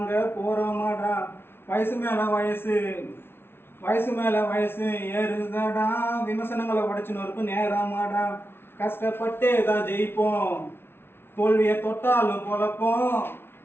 போகிறோமாடா. வயசு மேலே வயசு வயசு மேலே வயசு ஏறுதடா, விமர்சனங்களை உடைச்சுன்னு இருக்கும் நேரமாடா. கஷ்டப்பட்டே தான் ஜெயிப்போம், தோல்வியை தொட்டாலும் பொழப்போம்.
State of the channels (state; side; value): late; right; 0.11 ms